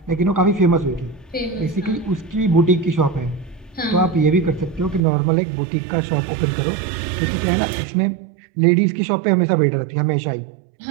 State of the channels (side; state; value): left; drops out; at 5.0 s